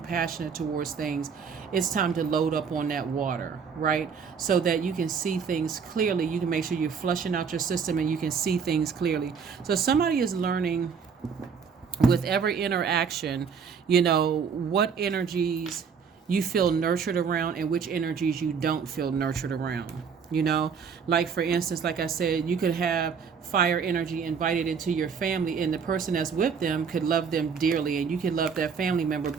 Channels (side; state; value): left; quieter; 6.2 dB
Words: towards things. It's time to load up on that water, right? So that you can see things clearly. You can make sure you're flushing out your system and you can see things clearly. So somebody is learning with every interaction, what energies you feel nurtured around and which energies you don't feel nurtured around. Like for instance, like I said, you could have fire energy invited into your family, and the person that's with them could love them dearly, and you can love that family member,